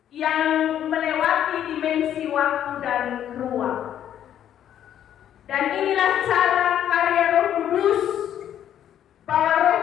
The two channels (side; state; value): right; quieter; 10.4 dB